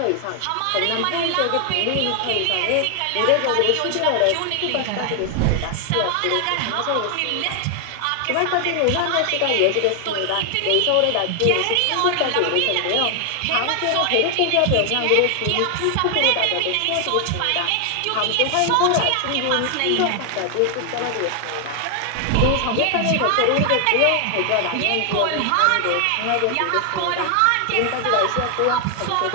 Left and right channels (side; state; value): both; different; correlation 0.00